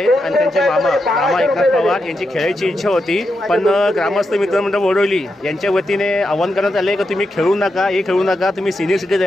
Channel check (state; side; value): normal; both; correlation 0.86